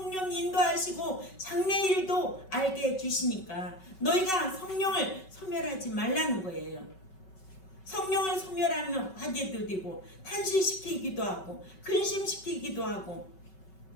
인도하시고 장래일도 알게 해주시니까 너희가 성령을 소멸하지 말라는 거예요. 성령을 소멸하면 화제도 되고 탄식시키기도 하고 근심시키기도 하고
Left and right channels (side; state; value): right; late; 5.3 ms